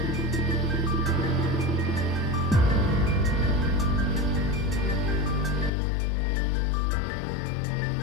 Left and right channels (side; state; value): right; drops out; at 5.7 s